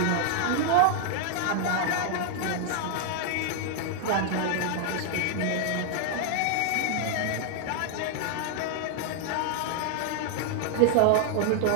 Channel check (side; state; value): both; different; correlation 0.00